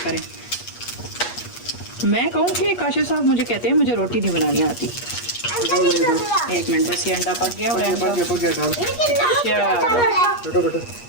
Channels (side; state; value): right; late; 8.4 ms